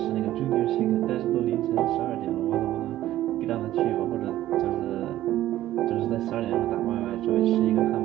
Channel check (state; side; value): quieter; left; 14.0 dB